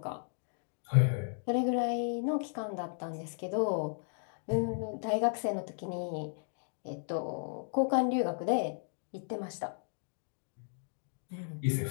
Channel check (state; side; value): silent; right; digital silence